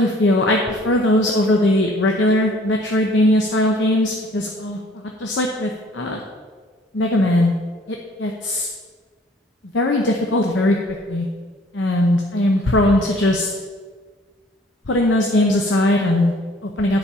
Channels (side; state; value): both; normal; correlation 0.56